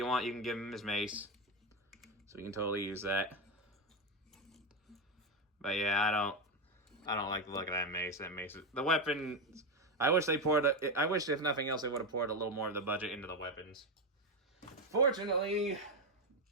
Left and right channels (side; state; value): both; normal; correlation 0.10